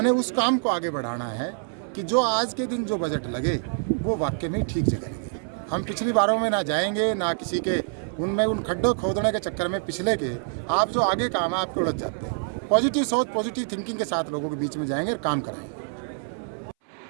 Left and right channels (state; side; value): silent; left; 61 dB below the other